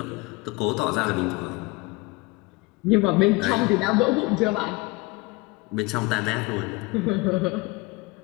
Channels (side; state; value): right; quieter; 23.5 dB